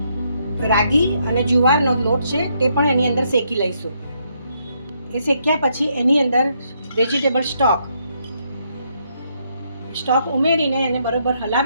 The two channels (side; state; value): both; inverted; correlation -0.75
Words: રાગી અને જુવારનો લોટ છે તે પણ એની અંદર શેકી લઈશું. એ શેક્યા પછી એની અંદર વેજીટેબલ સ્ટોક ઉમેરીને એને બરોબર